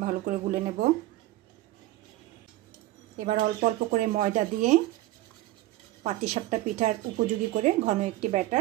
ভালো করে গুলে নেব। এবার অল্প অল্প করে ময়দা দিয়ে পাটিসাপটা পিঠার উপযোগী করে ঘন একটি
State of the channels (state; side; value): quieter; left; 16.8 dB